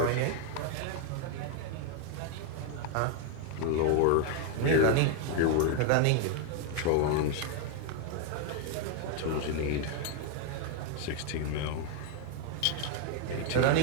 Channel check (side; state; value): both; different; correlation 0.01